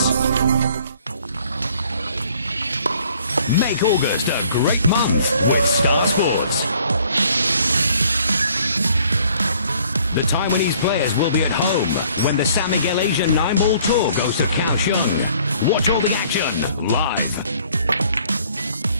Make August a great month with Star Sports. The Taiwanese players will be at home when the San Miguel Asian 9-ball tour goes to Kaohsiung. Watch all the action live.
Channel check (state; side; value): inverted; both; correlation -0.59